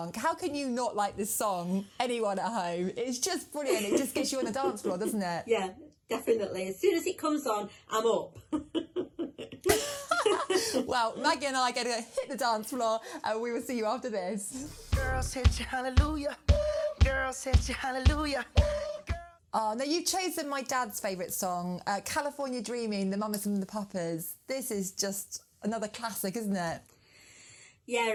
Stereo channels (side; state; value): both; identical; correlation 1.00